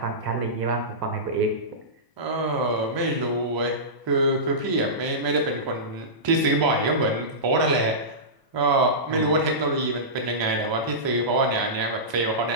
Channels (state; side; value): late; left; 1.0 ms